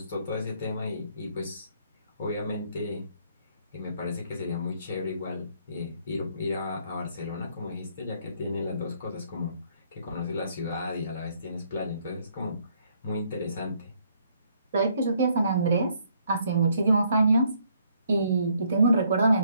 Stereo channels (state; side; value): inverted; both; correlation -0.68